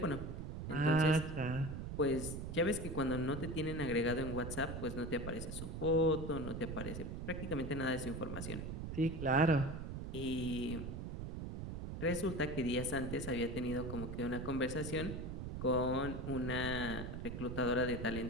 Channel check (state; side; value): noise; right; rumble, 6 dB below the sound